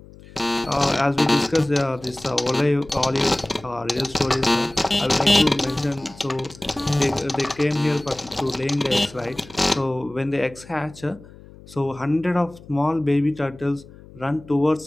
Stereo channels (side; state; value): left; noise; hum, 21 dB below the sound